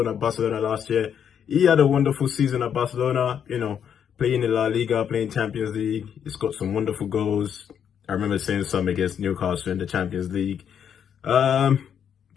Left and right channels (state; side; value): quieter; right; 8.3 dB